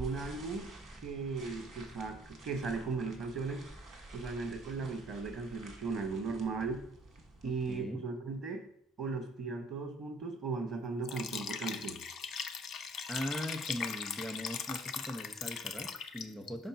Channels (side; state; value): both; normal; correlation 0.58